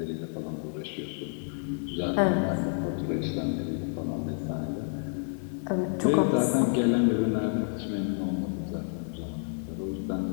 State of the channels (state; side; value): silent; right; 58 dB below the other